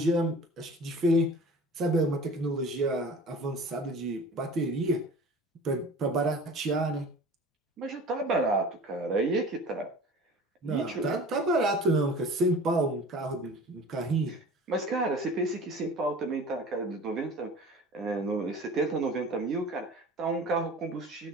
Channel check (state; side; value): normal; both; correlation 0.41